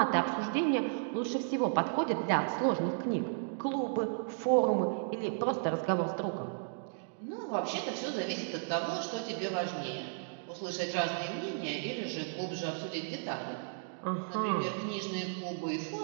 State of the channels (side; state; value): left; silent; digital silence